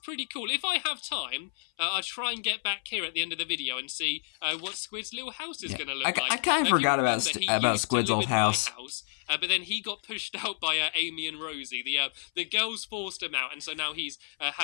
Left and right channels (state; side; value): silent; right; 58 dB below the other